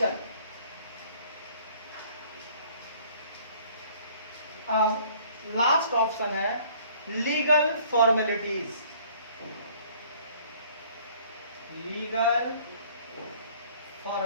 अब लास्ट ऑप्शन है लीगल फॉर्मेलिटीज। लीगल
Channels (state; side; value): inverted; both; correlation -0.55